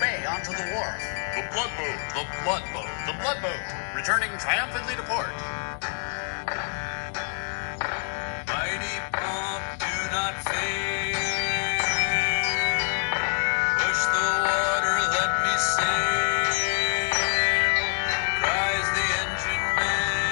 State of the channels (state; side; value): silent; right; digital silence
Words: bay onto the wharf. The Bloodboat. The Bloodboat. The Bloodboat, returning triumphantly to port. Mighty pump, do not fail. Push the water, let me sail. Cries the engine